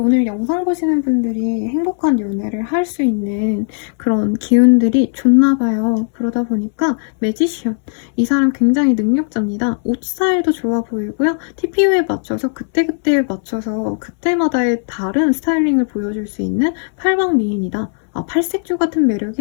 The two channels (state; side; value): silent; right; digital silence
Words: 영상 보시는 분들이 행복한 연애를 할 수 있는 그런 기운들이 좋나 봐요. 그러다 보니까 매지션. 이 사람 굉장히 능력자입니다. 옷 스타일도 좋아 보이고요. TPO에 맞춰서 그때그때에 맞춰서 그때마다의 다른 스타일링을 보여줄 수 있는 팔방미인이다. 팔색조 같은